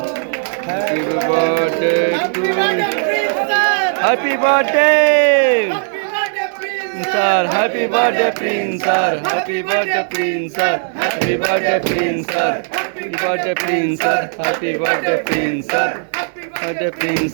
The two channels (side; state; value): left; silent; digital silence